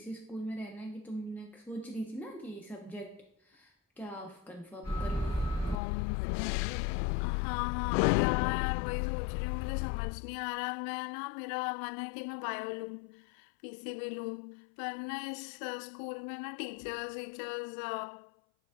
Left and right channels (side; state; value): right; drops out; at 5.8 s